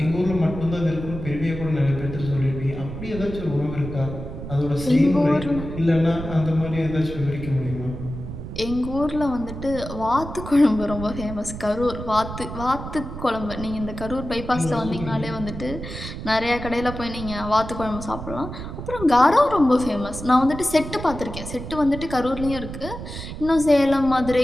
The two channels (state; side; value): noise; right; rumble, 9 dB below the sound